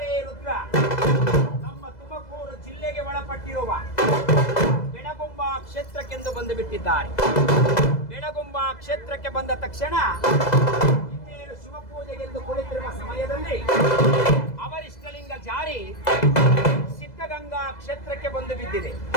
ರುದ್ರ ನಮ್ಮ ತುಮಕೂರು ಜಿಲ್ಲೆಗೆ ಒಳಪಟ್ಟಿರುವ ಬೆಳಗುಂಬ ಕ್ಷೇತ್ರಕ್ಕೆಂದು ಬಂದು ಬಿಟ್ಟಿದ್ದಾರೆ. ಬೆಳಗುಂಬ ಕ್ಷೇತ್ರಕ್ಕೆ ಬಂದ ತಕ್ಷಣ ಇನ್ನೇನು ಶಿವಪೂಜೆಗೆಂದು ಕುಳಿತಿರುವ ಸಮಯದಲ್ಲಿ ಅವರಿಷ್ಟಲಿಂಗ ಜಾರಿ ಸಿದ್ಧಗಂಗಾ ಕ್ಷೇತ್ರಕ್ಕೆ ಬಂದು ಬಿದ್ದಿದೆ.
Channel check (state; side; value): late; right; 2.0 ms